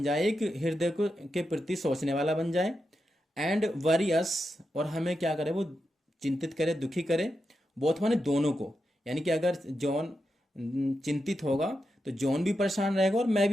जाए, एक हृदय को के प्रति सोचने वाला बन जाए। एंड वरी अस, और हमें क्या करे, वो चिंतित करे, दुखी करे। बोथ माने दोनों को, यानी कि अगर जॉन चिंतित होगा तो जॉन भी परेशान रहेगा और मैं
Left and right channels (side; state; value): both; normal; correlation 0.87